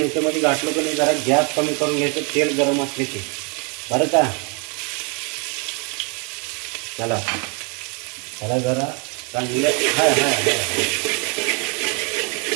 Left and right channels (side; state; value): left; quieter; 33.9 dB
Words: घातलं की नाही जरा गॅस कमी करून घ्यायचं, तेल गरम असले की, बरं का. चला त्याला जरा चांगलं